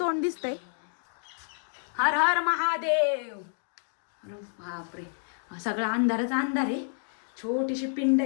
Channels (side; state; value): right; silent; digital silence